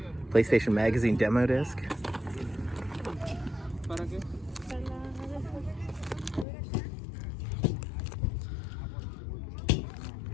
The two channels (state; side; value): drops out; right; at 6.5 s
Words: PlayStation Magazine demo disc.